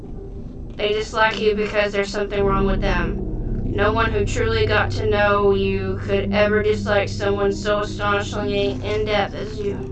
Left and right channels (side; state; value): both; identical; correlation 1.00